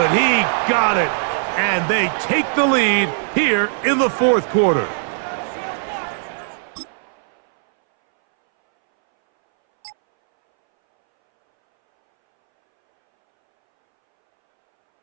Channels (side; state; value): left; silent; 63 dB below the other